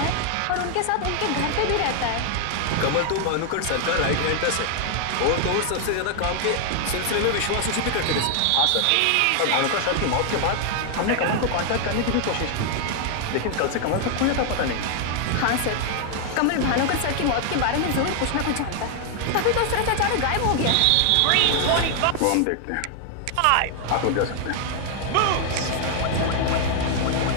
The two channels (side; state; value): both; different; correlation 0.00